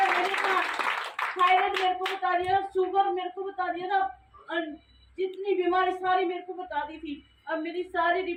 थायराइड मेरे को बता दिया, शुगर मेरे को बता दिया था, जितनी बीमारी सारी मेरे को बता दी थी। अब मेरी सारी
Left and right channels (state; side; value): identical; both; correlation 1.00